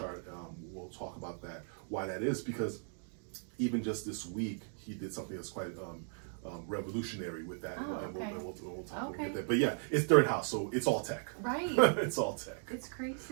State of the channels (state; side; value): silent; left; 53 dB below the other